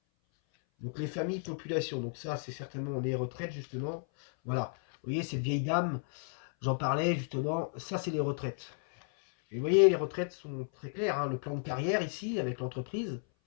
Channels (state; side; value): silent; right; 55 dB below the other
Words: donc les familles, population. Donc ça, c'est certainement les retraites, justement. Voilà. Vous voyez, cette vieille dame, j'en parlais, justement. Ça, c'est les retraites. Et vous voyez, les retraites sont très claires, hein. Le plan de carrière ici, avec l'entreprise.